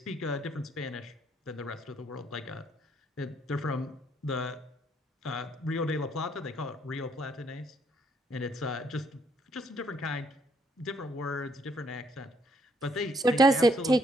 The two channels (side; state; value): both; normal; correlation 0.69